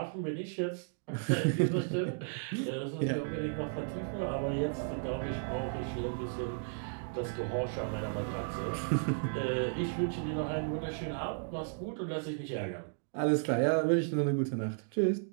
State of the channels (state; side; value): silent; left; digital silence